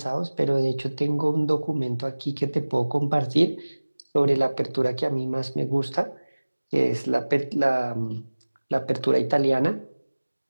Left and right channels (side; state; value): both; inverted; correlation -1.00